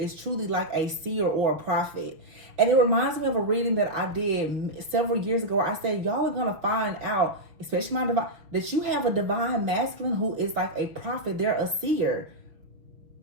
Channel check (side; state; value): left; late; 6.2 ms